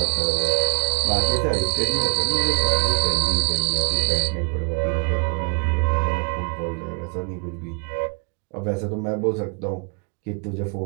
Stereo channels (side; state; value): left; quieter; 37.8 dB